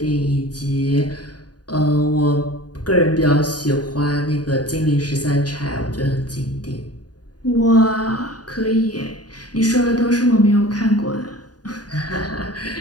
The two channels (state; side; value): late; right; 0.69 ms